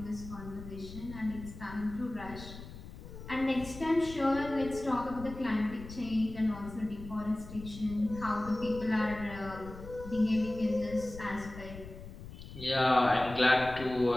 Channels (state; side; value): noise; left; rumble, 13 dB below the sound